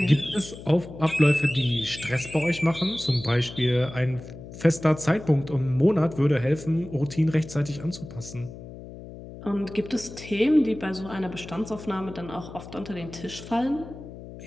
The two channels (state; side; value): noise; left; hum, 14 dB below the sound